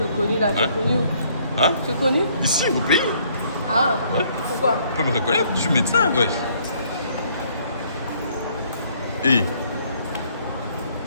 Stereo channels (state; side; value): inverted; both; correlation -0.65